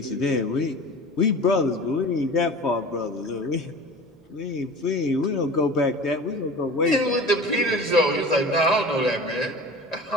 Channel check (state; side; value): normal; both; correlation 0.38